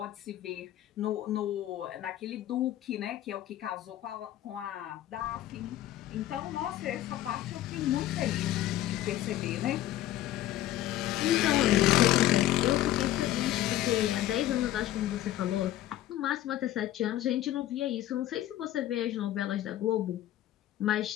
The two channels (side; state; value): right; quieter; 13.5 dB